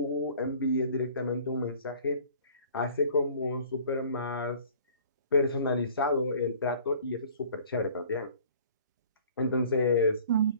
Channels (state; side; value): inverted; both; correlation -0.51